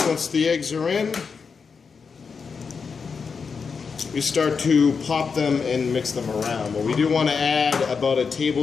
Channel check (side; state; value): right; quieter; 5.5 dB